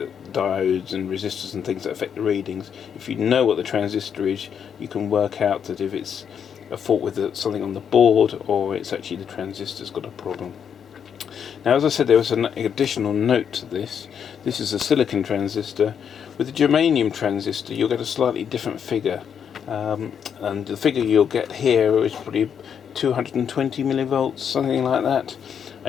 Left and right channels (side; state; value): right; quieter; 7.8 dB